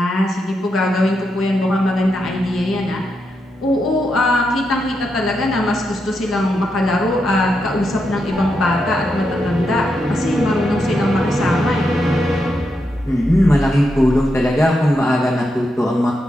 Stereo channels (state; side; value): normal; both; correlation 0.84